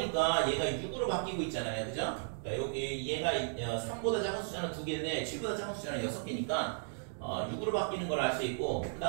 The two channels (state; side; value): silent; left; digital silence